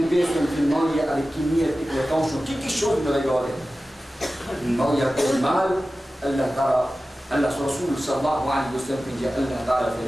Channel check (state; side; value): normal; both; correlation 0.95